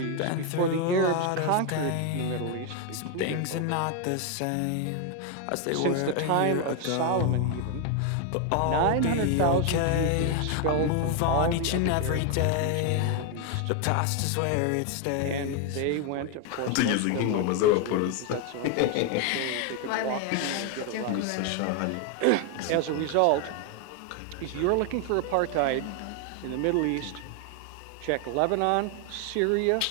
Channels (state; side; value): different; both; correlation 0.01